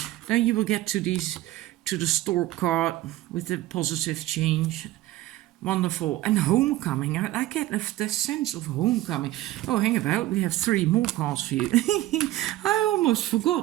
Then you will get to the stork card with the positive change. Wonderful. And homecoming. I get the sense of homecoming. Oh, hang about. We have 3 more cards for you. I almost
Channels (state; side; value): quieter; left; 16.1 dB